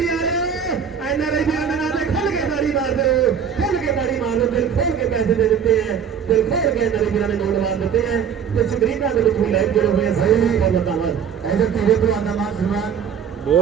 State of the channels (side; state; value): left; quieter; 7.7 dB